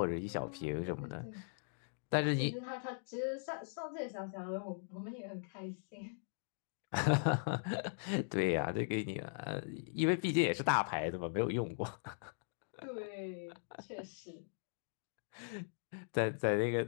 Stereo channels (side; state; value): right; silent; digital silence